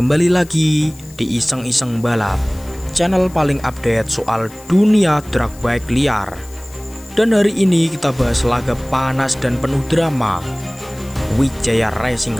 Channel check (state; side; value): noise; left; hiss, 23 dB below the sound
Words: lagi di Iseng-Iseng Balap, channel paling update soal dunia drag bike liar. Dan hari ini kita bahas laga panas dan penuh drama, Wijaya